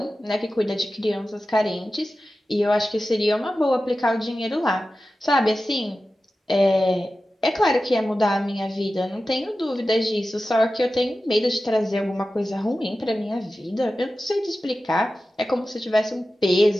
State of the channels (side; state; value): both; normal; correlation 0.94